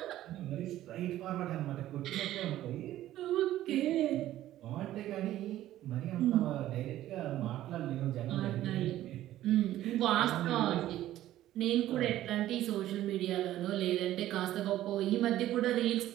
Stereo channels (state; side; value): quieter; left; 13.8 dB